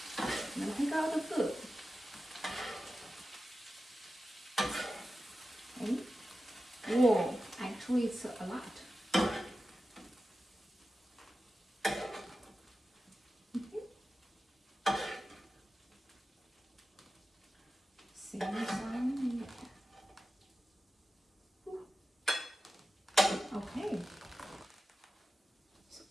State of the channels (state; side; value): normal; both; correlation 0.93